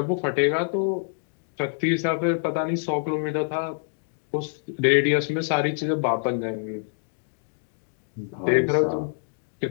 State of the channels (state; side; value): silent; right; digital silence